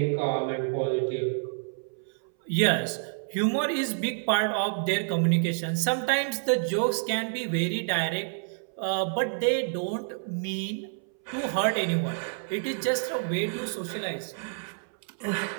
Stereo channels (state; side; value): silent; left; 59 dB below the other